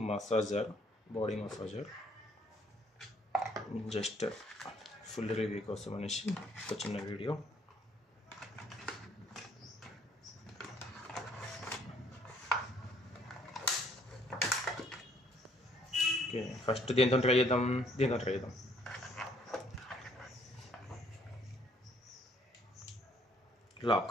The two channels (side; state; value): both; normal; correlation 0.64